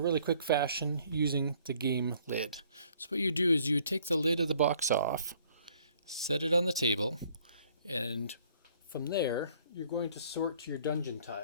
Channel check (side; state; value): both; inverted; correlation -0.61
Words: really quick fashion using the game lid. So what you do is you take the lid of the box off, set it on the table, and from there you're going to sort your dungeon